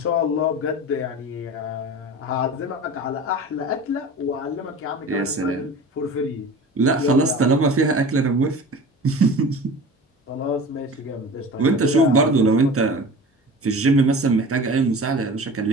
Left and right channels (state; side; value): normal; both; correlation 0.37